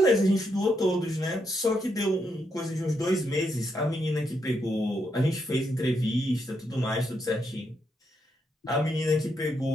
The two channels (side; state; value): both; normal; correlation 0.79